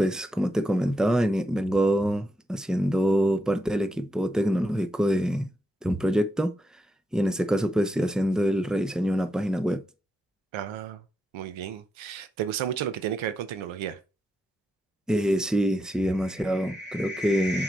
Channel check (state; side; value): normal; both; correlation 0.85